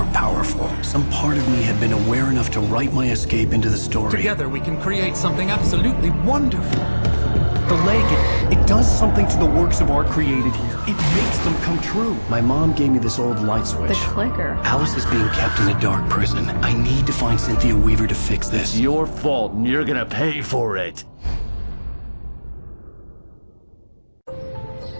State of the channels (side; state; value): both; inverted; correlation -1.00